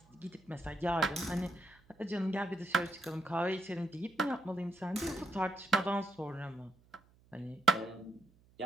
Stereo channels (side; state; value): right; noise; hum, 29 dB below the sound